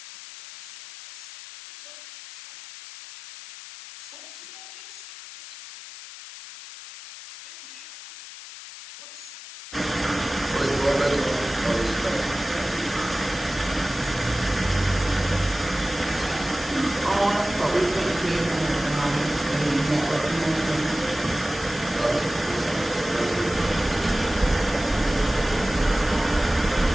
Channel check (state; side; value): noise; left; hiss, 13 dB below the sound